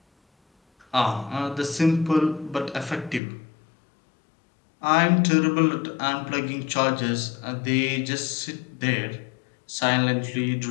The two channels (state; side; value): drops out; right; at 3.2 s